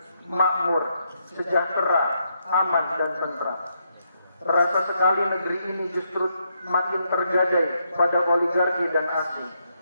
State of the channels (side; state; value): both; inverted; correlation -0.78